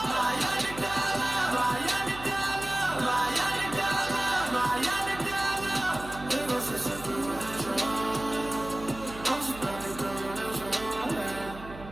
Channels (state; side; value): noise; right; hum, 14 dB below the sound